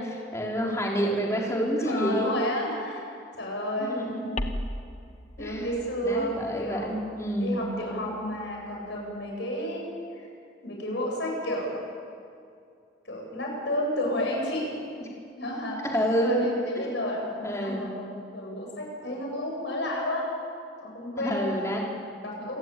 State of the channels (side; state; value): both; normal; correlation 0.31